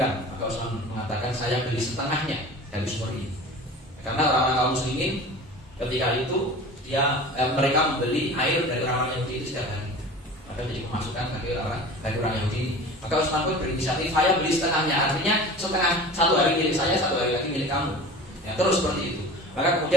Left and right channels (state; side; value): normal; both; correlation 0.38